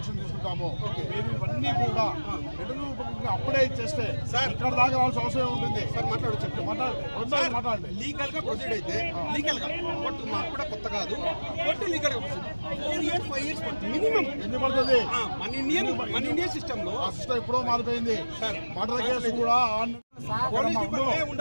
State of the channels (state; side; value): inverted; both; correlation -1.00